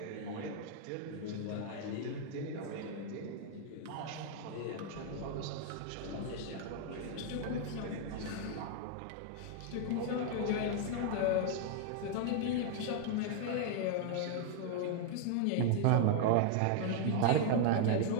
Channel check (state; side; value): different; both; correlation 0.00